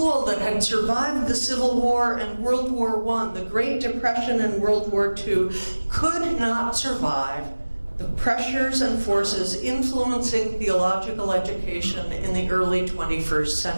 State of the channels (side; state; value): both; inverted; correlation -1.00